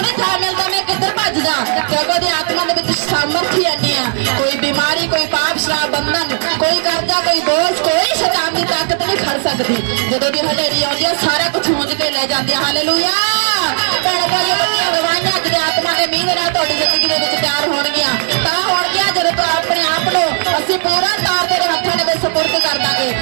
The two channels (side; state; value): left; silent; 62 dB below the other